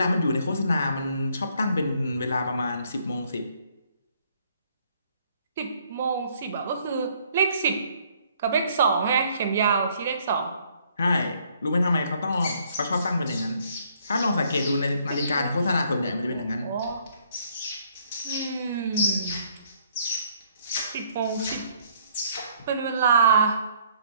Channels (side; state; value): both; inverted; correlation -0.65